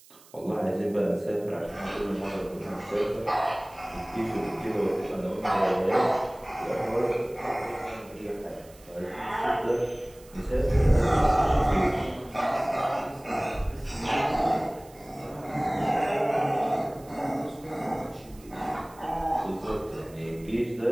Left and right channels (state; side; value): noise; right; hiss, 25 dB below the sound